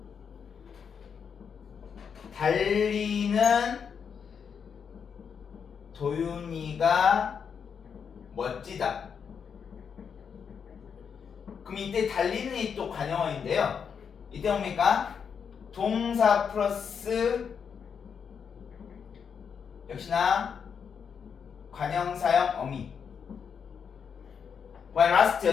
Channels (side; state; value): right; quieter; 6.8 dB